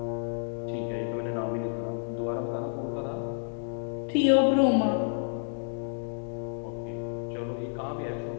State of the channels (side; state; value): right; silent; digital silence